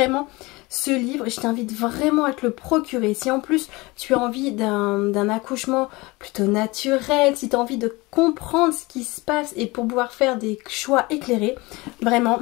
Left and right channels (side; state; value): right; quieter; 23.1 dB